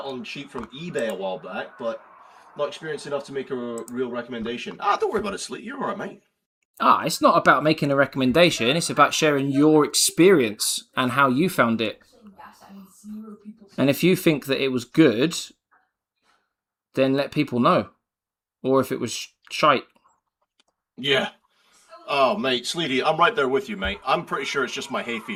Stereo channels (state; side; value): identical; both; correlation 1.00